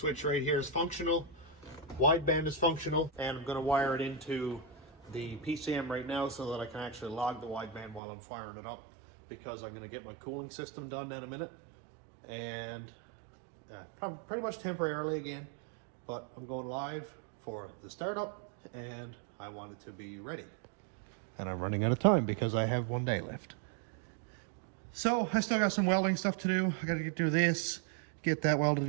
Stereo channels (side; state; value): left; drops out; at 8.0 s